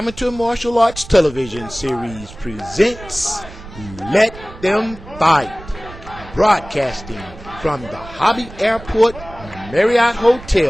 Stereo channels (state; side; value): noise; right; rumble, 16 dB below the sound